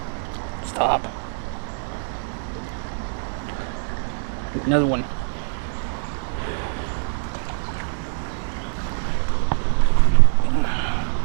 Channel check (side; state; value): left; silent; digital silence